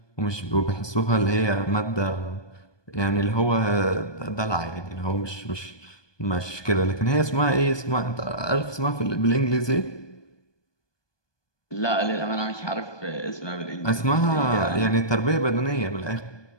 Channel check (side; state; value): right; late; 1.2 ms